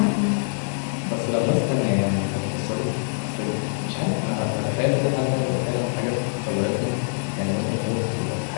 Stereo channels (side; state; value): right; silent; 59 dB below the other